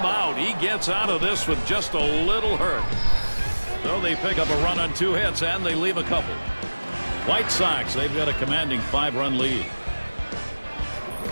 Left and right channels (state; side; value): inverted; both; correlation -1.00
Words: out. He gets out of this with just a little hurt. So they pick up a run on 2 hits, and they leave a couple. White Sox, they've got a commanding 5-run lead.